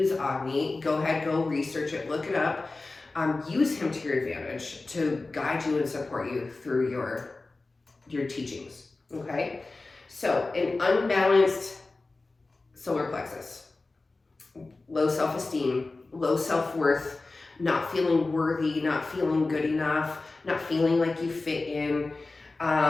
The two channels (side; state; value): right; quieter; 3.4 dB